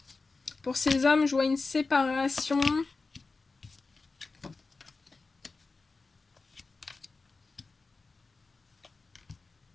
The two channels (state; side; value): quieter; right; 3.9 dB